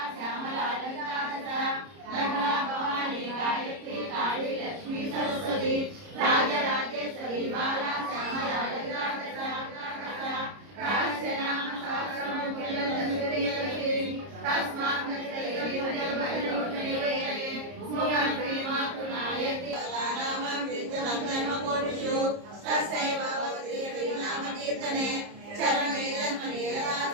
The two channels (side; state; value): left; late; 30 ms